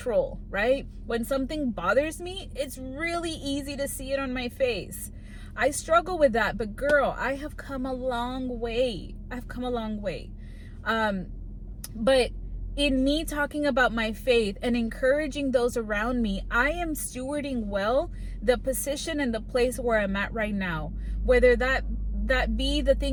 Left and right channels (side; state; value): both; identical; correlation 1.00